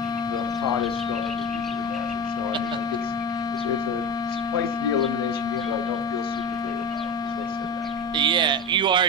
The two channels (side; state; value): both; normal; correlation 0.26